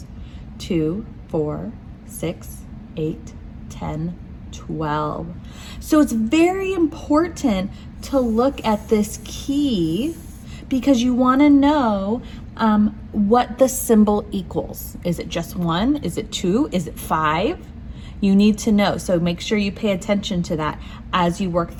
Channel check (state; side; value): identical; both; correlation 1.00